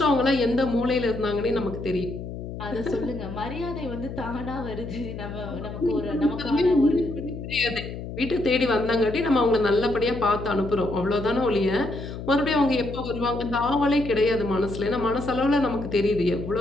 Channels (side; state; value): left; noise; hum, 9 dB below the sound